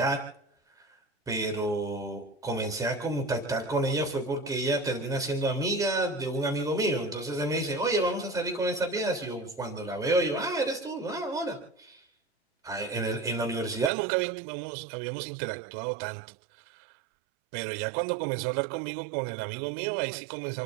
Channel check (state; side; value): drops out; left; at 13.9 s